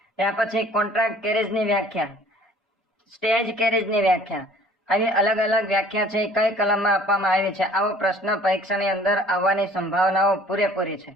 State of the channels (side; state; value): both; normal; correlation 0.52